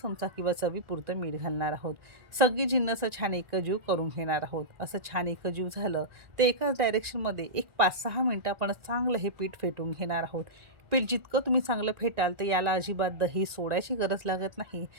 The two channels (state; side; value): late; left; 1.9 ms